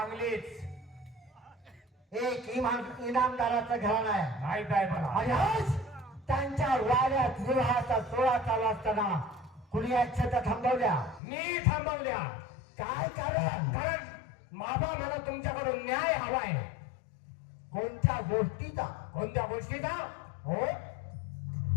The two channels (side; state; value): right; drops out; at 11.2 s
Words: एक इनामदाराचं घराणं आहे माहित आहे मला आणि आज त्यांच्या वाड्यात विवाहाचा सोहळा चालू असताना कुणी या छता थांबवल्या मी थांबवल्या काय कारण कारण माबा मला तुमच्याकडून न्याय हवाय कोणत्या गोष्टीचा कोणत्या गोष्टीचा हो